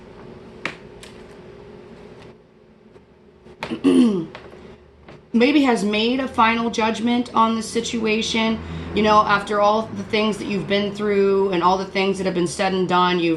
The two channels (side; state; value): both; identical; correlation 1.00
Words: maybe has made a final judgment on the situation. After all the things that you've been through and all the things that have been said and done,